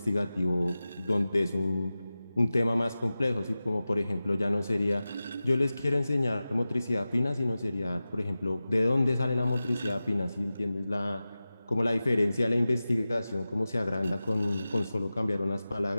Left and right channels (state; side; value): inverted; both; correlation -0.95